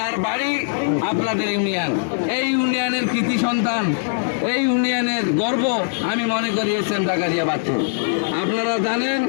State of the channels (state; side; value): silent; right; digital silence